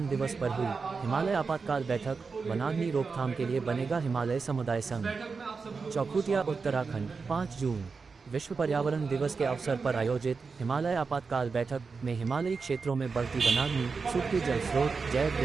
दिवस पर हुई हिमालय आपातकाल बैठक, वनाग्नि रोकथाम के लिए बनेगा हिमालय समुदाय संघ। चौखुटिया उत्तराखंड 5 जून। विश्व पर्यावरण दिवस के अवसर पर आयोजित हिमालय आपातकाल बैठक में हिमालयी क्षेत्रों में बढ़ती वनाग्नि, सूखते जल स्रोत, जैव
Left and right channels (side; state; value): left; quieter; 4.8 dB